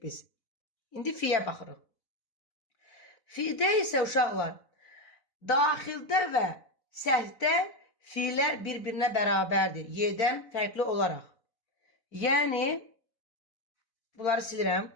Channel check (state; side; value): late; right; 4.0 ms